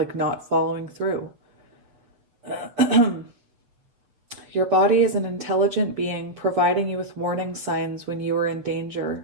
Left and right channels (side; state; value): left; late; 7.2 ms